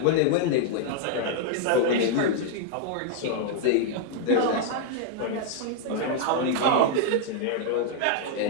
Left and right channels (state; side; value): different; both; correlation 0.00